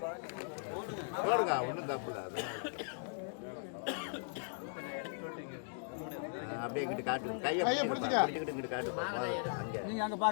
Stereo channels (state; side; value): silent; right; digital silence